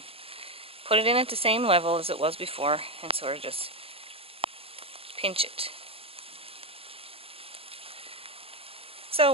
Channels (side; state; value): left; late; 0.27 ms